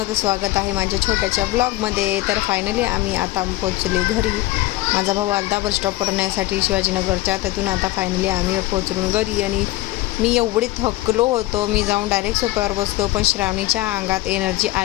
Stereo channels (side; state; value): right; quieter; 17.9 dB